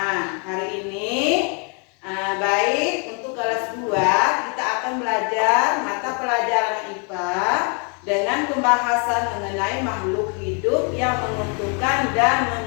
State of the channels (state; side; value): quieter; right; 37.3 dB